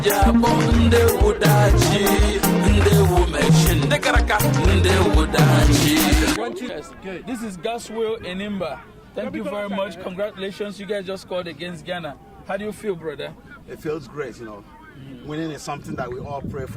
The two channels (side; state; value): both; identical; correlation 1.00